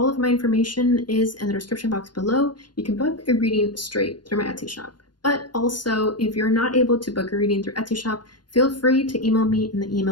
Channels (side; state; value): right; late; 0.71 ms